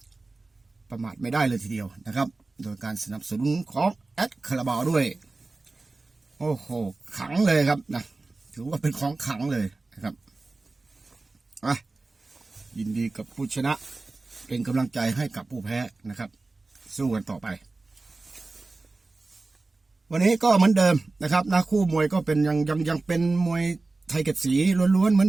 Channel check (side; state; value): left; quieter; 3.4 dB